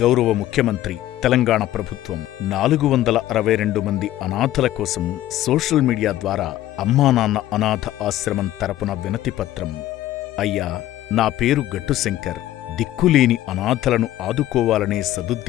గౌరవ ముఖ్యమంత్రి, తెలంగాణ ప్రభుత్వం 462 మంది అనాథల కోసం సోషల్ మీడియా ద్వారా అమ్మానాన్న అనాథ ఆశ్రమం తరపున వినతిపత్రం. అయ్యా, నా పేరు గట్టు శంకర్. దిక్కులేని అనాథలను ఆదుకోవాలనే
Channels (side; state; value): right; quieter; 13.9 dB